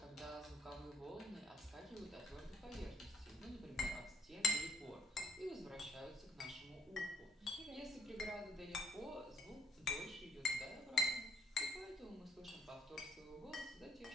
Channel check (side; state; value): both; normal; correlation 0.65